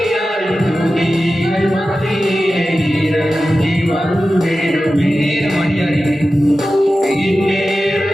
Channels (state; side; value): normal; both; correlation 0.94